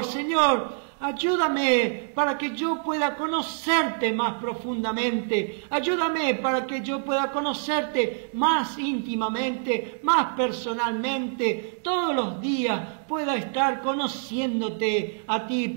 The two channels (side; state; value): left; silent; digital silence